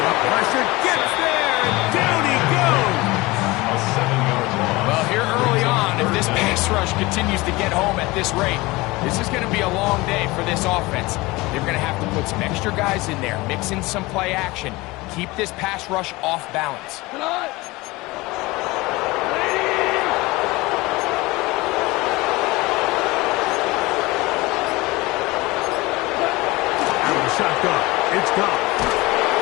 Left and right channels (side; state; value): right; quieter; 21.7 dB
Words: Pressure gets there, and down he goes. Well, here early on, if this pass rush continues to get home at this rate, this is going to be a long day for this offense. They're going to have to put some extra guys in there, mix in some play action, keep this pass rush off balance. Out of the shotgun, it's gone.